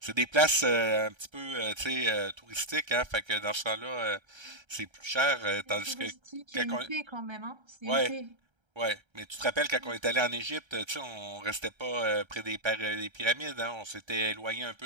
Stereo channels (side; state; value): left; late; 1.3 ms